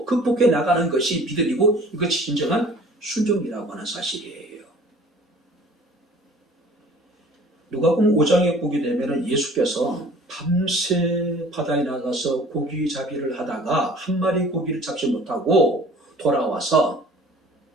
극복해 나가는 것이 믿음이고 이것이 진정한 순종이라고 하는 사실이에요. 누가복음 5장에 보게 되면 예수께서 밤새 바다에 나가서 고기 잡이를 하다가 한 마리 고기를 잡지 못하고 돌아와서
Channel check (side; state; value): both; normal; correlation 0.49